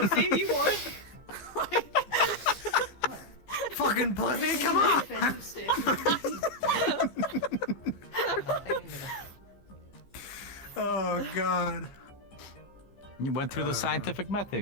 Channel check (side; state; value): right; late; 15 ms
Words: Pussy, you would. Fucking pussy, come on! Oh god. You went through the scientific